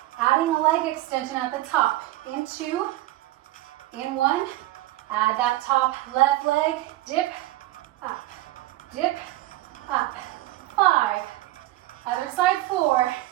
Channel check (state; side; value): quieter; left; 16.7 dB